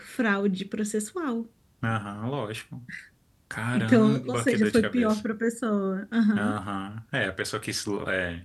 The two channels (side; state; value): both; identical; correlation 1.00